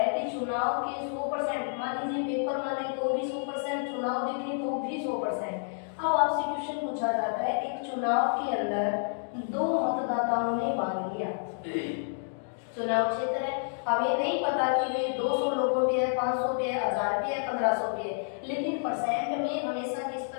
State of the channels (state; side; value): silent; right; digital silence